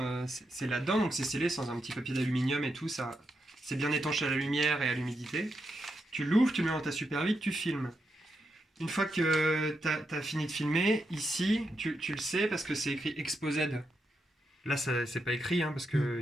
là-dedans, donc c'est scellé sans un petit papier d'aluminium et tout, ça, c'est bien étanché à la lumière et à l'humidité. Tu l'ouvres, tu le mets dans ta Super 8, tu filmes. Une fois que tu as fini de filmer, ici, tu le sais parce que c'est écrit ExpoZ. Là, c'est pas écrit, hein, parce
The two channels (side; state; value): both; normal; correlation 0.84